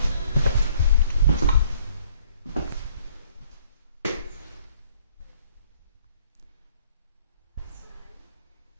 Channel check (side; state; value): both; inverted; correlation -0.60